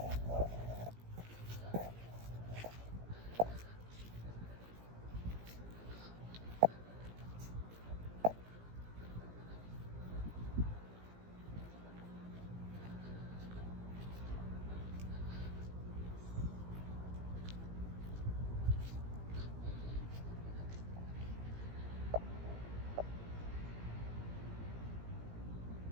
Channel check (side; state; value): left; late; 17 ms